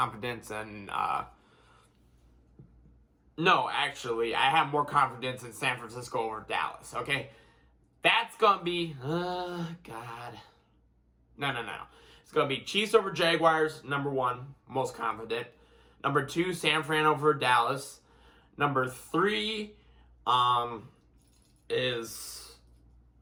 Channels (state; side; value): identical; both; correlation 1.00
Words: in... No, actually, I have more confidence in San Francisco over Dallas, okay? That's going to be... God. No. It's going to be Chiefs over Jaguars, number 1, most confident. Number 2, San Fran over Dallas. Number 3 is...